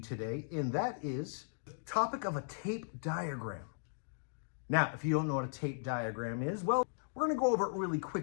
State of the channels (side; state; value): right; silent; digital silence